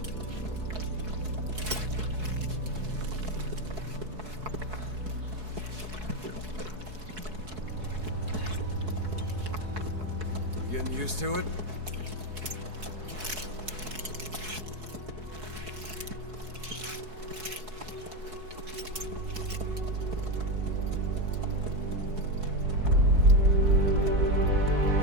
Getting used to it?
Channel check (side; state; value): left; late; 4.7 ms